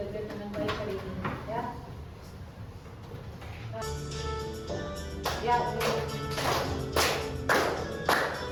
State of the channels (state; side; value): identical; both; correlation 1.00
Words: dengan baik hari ini, ya. Ya,